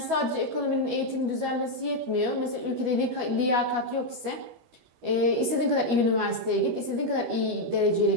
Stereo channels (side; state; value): left; late; 12 ms